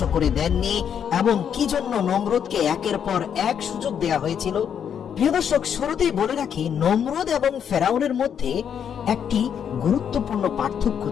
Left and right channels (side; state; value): right; quieter; 8.2 dB